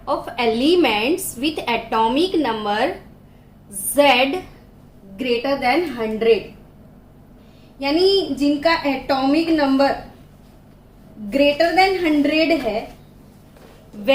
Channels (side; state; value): both; identical; correlation 1.00